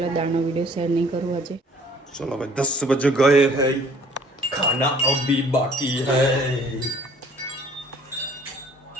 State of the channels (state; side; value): normal; both; correlation 0.56